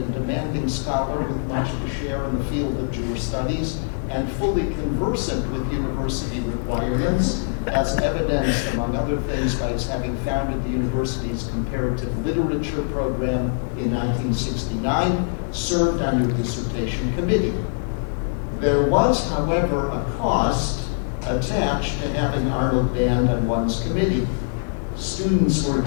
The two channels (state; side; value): silent; right; digital silence